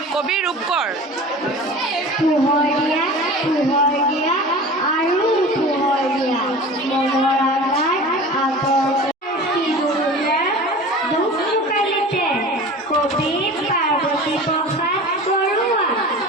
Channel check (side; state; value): both; normal; correlation 0.37